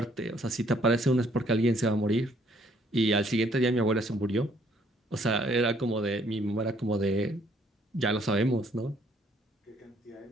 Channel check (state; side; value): normal; both; correlation 0.65